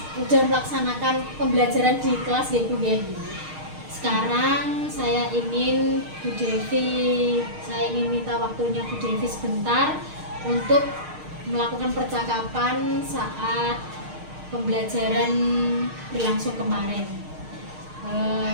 melaksanakan pembelajaran di kelas ya Bu ya. Sekarang saya ingin minta waktunya Bu Devi sebentar untuk melakukan percakapan saat pembelajaran berlangsung kemarin.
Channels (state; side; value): late; left; 6.5 ms